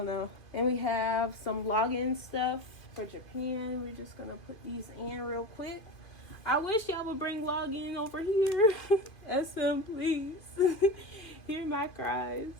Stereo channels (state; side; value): late; right; 2.5 ms